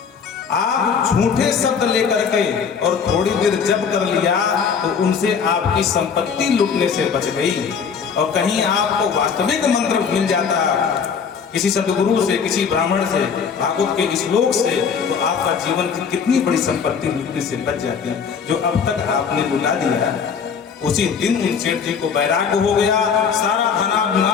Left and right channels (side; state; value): right; quieter; 6.4 dB